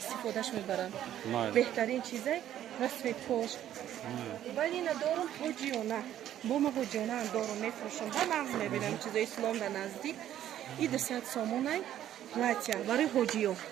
мебаранд беҳтарин чизай расветкош вале ина дорум ҳоҷиёна бо ма ҳоҷиёнаам дорум мефурӯшам ба нағз мебинам чизои ислом да наздик и 200 сомонай платья барои ҳоҷиё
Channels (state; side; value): quieter; left; 11.6 dB